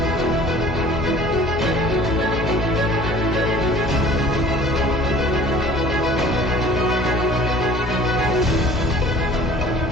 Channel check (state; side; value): noise; left; hum, 12 dB below the sound